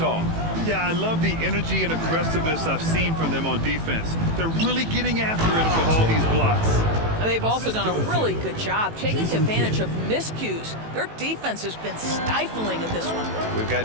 Yeah, I love the energy and aggressiveness I've seen from them on defense. They're really getting after it with all these blocks. And they've also done a really good job taking advantage of miscues. Their defense has been stifling in this one. We've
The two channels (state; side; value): late; left; 18 ms